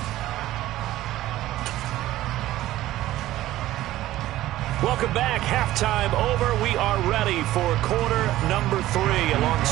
Welcome back. Halftime over. We are ready for quarter number 3.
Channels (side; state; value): left; quieter; 15.1 dB